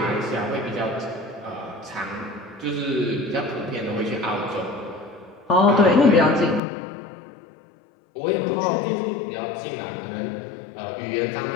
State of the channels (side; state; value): right; drops out; at 6.6 s